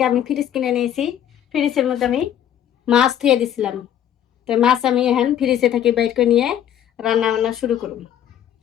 আমি ফ্রিজ কিনে নিয়েছি। ফ্রিজের মধ্যে আমি মাছ ধুয়ে দিছিলাম। তো মাছ আমি এখন ফ্রিজে থেকে বাইর করে নিয়ে রান্না বান্না শুরু করব।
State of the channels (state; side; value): quieter; right; 10.3 dB